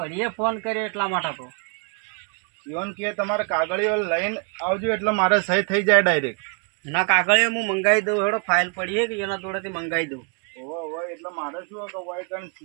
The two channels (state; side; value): quieter; left; 39.1 dB